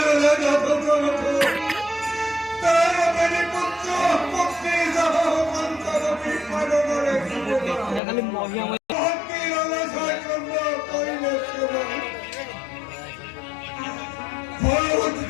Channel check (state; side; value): drops out; right; at 8.0 s